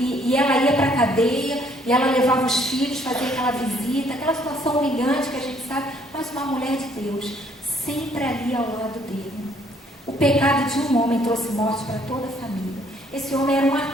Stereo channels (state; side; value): normal; both; correlation 0.64